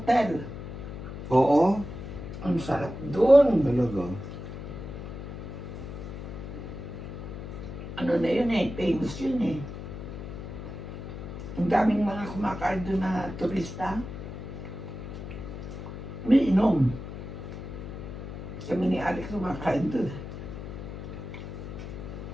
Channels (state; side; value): noise; left; hum, 9 dB below the sound